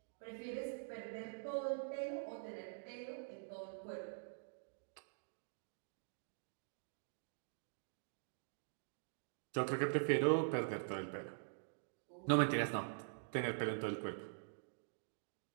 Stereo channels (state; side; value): silent; left; digital silence